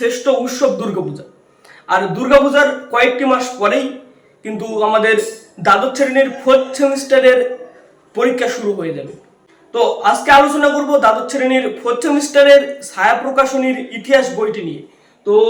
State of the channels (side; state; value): both; identical; correlation 1.00